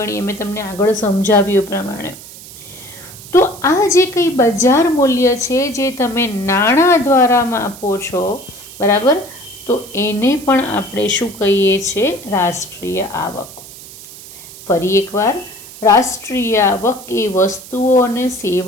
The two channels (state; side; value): noise; right; hiss, 17 dB below the sound